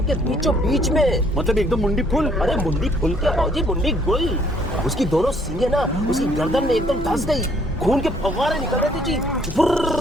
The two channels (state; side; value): normal; both; correlation 0.64